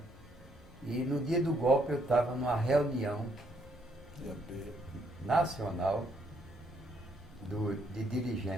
E no dia do golpe, eu estava numa reunião nacional de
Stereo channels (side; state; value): both; normal; correlation 0.71